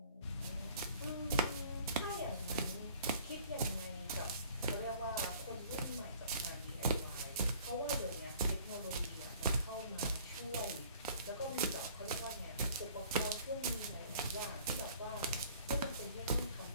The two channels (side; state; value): both; inverted; correlation -0.52